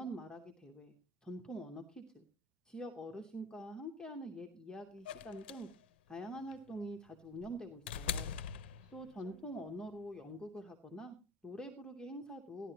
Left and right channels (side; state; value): both; normal; correlation 0.36